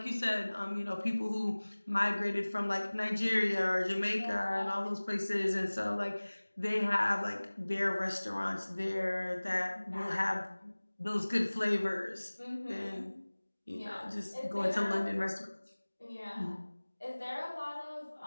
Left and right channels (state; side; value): inverted; both; correlation -1.00